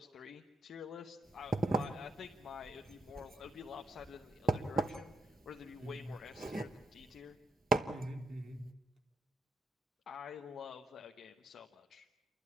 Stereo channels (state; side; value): normal; both; correlation 0.80